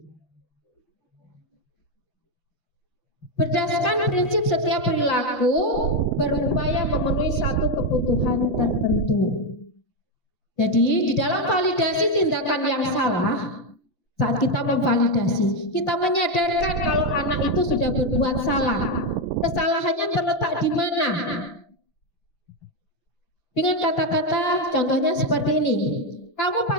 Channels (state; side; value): late; right; 5.8 ms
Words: Berdasarkan prinsip setiap perilaku berupaya memenuhi satu kebutuhan tertentu. Jadi di dalam validasi tindakan yang salah, saat kita memvalidasi, kita menyadarkan kalau anak itu sudah berbuat salah. Kesalahannya terletak di mana? Dengan kata-kata contohnya seperti ini. Kamu